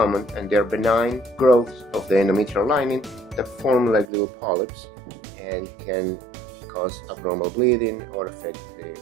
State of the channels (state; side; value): drops out; left; at 4.0 s